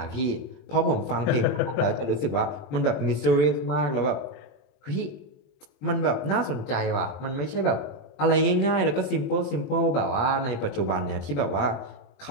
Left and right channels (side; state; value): right; late; 20 ms